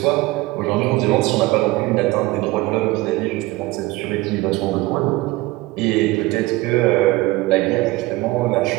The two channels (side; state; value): left; quieter; 20.0 dB